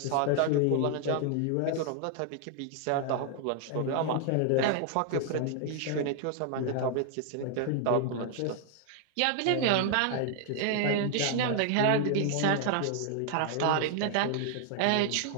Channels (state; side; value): different; both; correlation 0.00